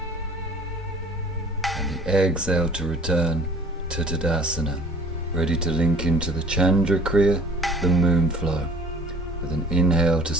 And the exhale to return to Tadasana. Ready to link into the Chandra Kriya, the moon flow, with an inhale to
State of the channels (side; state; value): both; normal; correlation 0.51